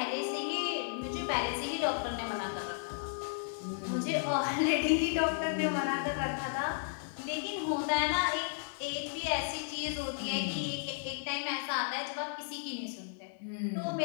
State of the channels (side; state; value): right; silent; 55 dB below the other